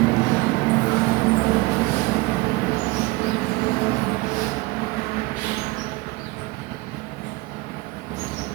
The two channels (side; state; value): left; quieter; 22.4 dB